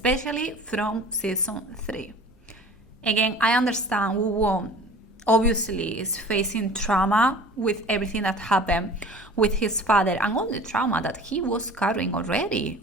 from season 3. Again, I understand Woo-won obviously is facing trauma with everything that happened with his father, and all the trauma that he was carrying already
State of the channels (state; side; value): normal; both; correlation 0.43